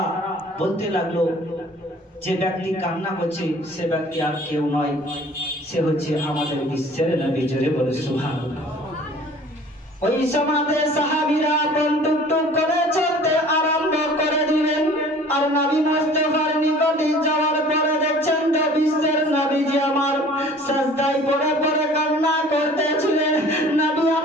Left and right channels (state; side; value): normal; both; correlation 0.48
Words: বলতে লাগলো, যে ব্যক্তি কান্না করছে সে ব্যক্তি আর কেউ নয়, সে হচ্ছে আমাদের বিশ্বের নবী। জোরে বলুন সুবহানাল্লাহ। ওই সমাজে সাহাবীরা টুক টুক করে চলতে আরম্ভ করে দিলেন। আর নবী মুস্তাফার নিকটে যাওয়ার পরে দেখছেন যে বিশ্বের নবীজি আমার সিজদায় পড়ে পড়ে কান্না করতেছিলেন। নবী